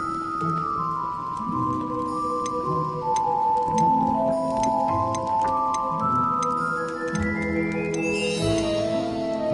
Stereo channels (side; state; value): both; identical; correlation 1.00